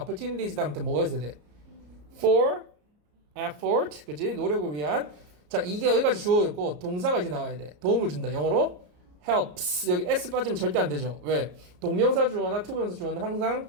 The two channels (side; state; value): left; late; 33 ms